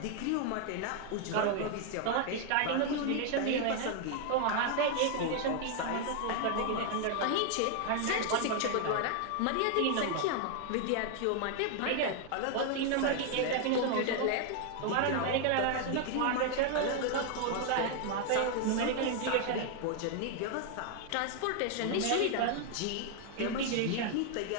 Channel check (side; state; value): both; different; correlation 0.00